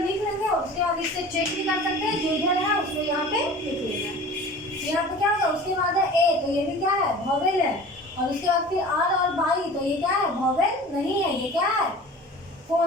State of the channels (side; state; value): both; normal; correlation 0.41